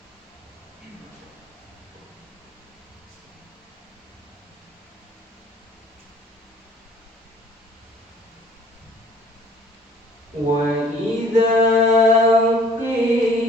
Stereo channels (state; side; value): normal; both; correlation 0.55